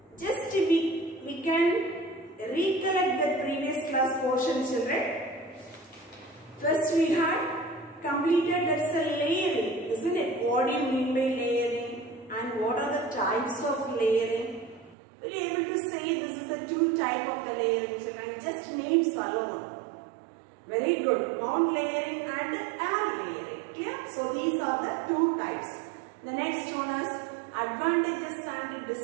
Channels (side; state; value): left; drops out; at 15.0 s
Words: Just we can recollect the previous class portion, children. First we had completed, that's a layering, isn't it? What do you mean by layering? And what are the types of layering? Will you able to say this is the two type of the layering, children? Just names alone. Very good. Ground layering and air layering. Clear? So these are the two types. The next one is advantages and